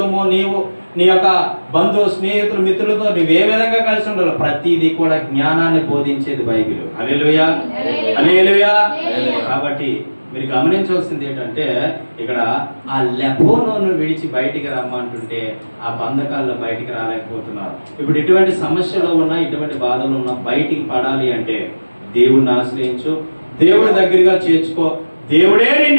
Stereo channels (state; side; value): inverted; both; correlation -1.00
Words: నీవు నీ యొక్క బంధు స్నేహితులు మిత్రులతో నువ్వు ఏ విధంగా కలిసి ఉండాలి, ప్రతిదీ కూడా జ్ఞానాన్ని బోధించేది బైబిల్. హల్లెలూయా. హల్లెలూయా. కాబట్టి మీరు గమనించవలసింది ఏంటంటే ఇక్కడ ఆ లెబోనోను విడిచి బయటికి రమ్మంటుంటే ఆ బంధకాల్లో బయటికి రాలేకపోతున్నారు. ఇప్పుడు ఎటువంటి సమస్యలు ఉన్నా, ఇటువంటి బాధలు ఉన్నా బయటికి పడాలి అంటే దేవుడిని ఆశ్రయించు, దేవుడి దగ్గరగా చేర్చుకో. దేవుడే